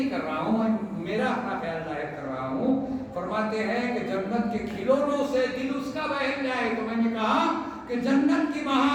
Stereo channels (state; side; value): identical; both; correlation 1.00